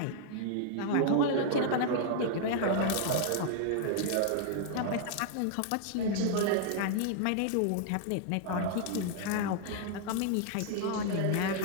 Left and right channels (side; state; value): both; different; correlation -0.01